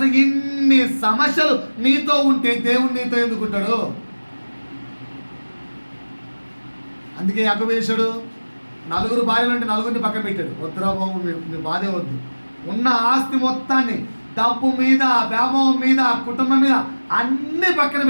ఇన్ని సమస్యలు నీతో ఉంటే దేవుడు నీతో ఎందుకుంటాడు? అందుకే యాకోబు చేశాడు, నలుగురు భార్యలు అంటే నలుగురిని పక్కన పెట్టాడు. వద్దురా బాబు, మీ బాధే వద్దు. ఉన్న ఆస్తి మొత్తాన్ని, డబ్బు మీద, వ్యామోహం మీద, కుటుంబం మీద అన్ని పక్కన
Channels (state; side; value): inverted; both; correlation -1.00